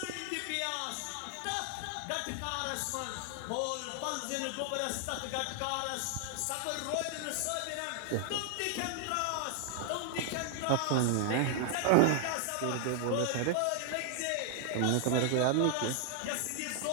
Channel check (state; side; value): different; both; correlation 0.00